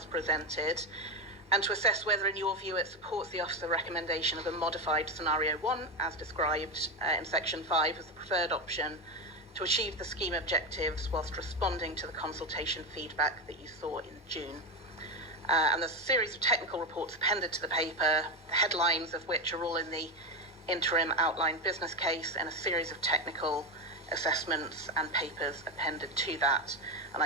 presented and to assess whether, in your view, it supports the Officer recommendation of a modified Scenario 1, as described in Section 5, as the preferred option to achieve the scheme objectives whilst responding to the consultation feedback that you saw in June. And there's a series of technical reports appended to the paper, the headlines of which are all in the interim outline business case, and a series of technical assessments and papers appended to that. And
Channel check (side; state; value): both; normal; correlation 0.13